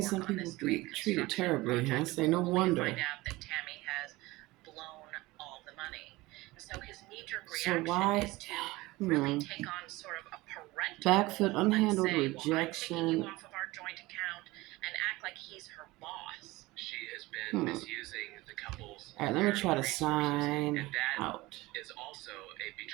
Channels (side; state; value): left; quieter; 20.3 dB